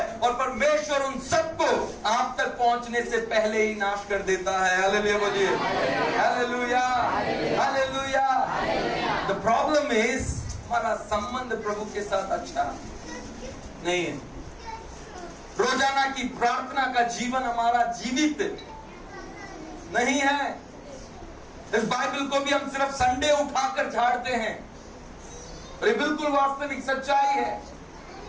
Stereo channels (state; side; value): identical; both; correlation 1.00